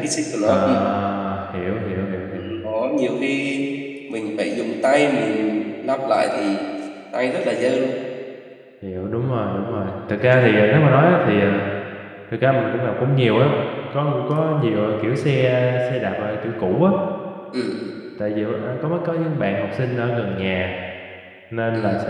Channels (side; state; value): both; identical; correlation 1.00